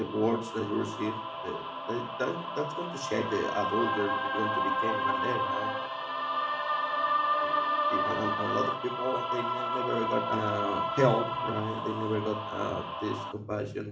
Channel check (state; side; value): identical; both; correlation 1.00